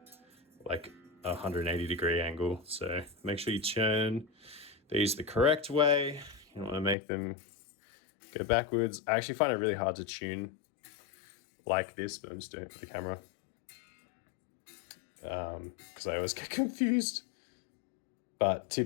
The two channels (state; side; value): drops out; right; at 7.0 s